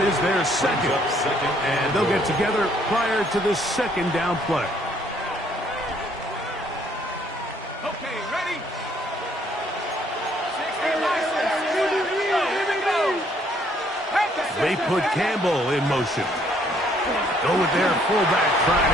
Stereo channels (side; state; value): both; normal; correlation 0.65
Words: is their second. And they'll get together prior to the second down play. Okay, ready? They put Campbell in motion. Go with their fullback